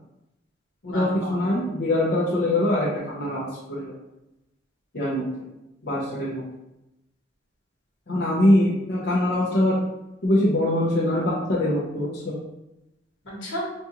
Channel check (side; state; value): both; normal; correlation 0.62